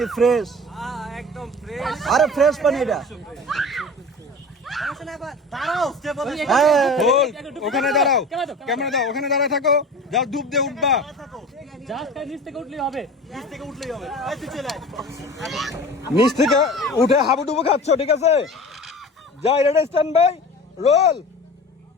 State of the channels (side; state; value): both; normal; correlation 0.36